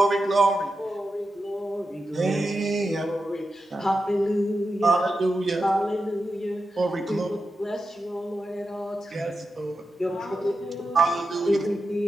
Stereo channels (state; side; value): normal; both; correlation 0.89